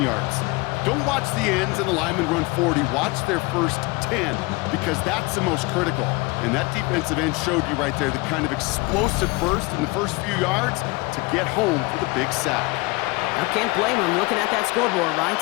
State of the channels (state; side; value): quieter; right; 24.2 dB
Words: yards. Don't watch the ends and the linemen run 40. Watch their first 10, because that's the most critical. And that defensive end showed you right there the kind of explosive burst in the first few yards to get home for the big sack. I can't blame him looking at that scoreboard, right?